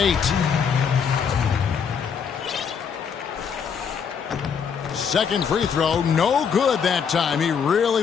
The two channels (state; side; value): quieter; right; 6.8 dB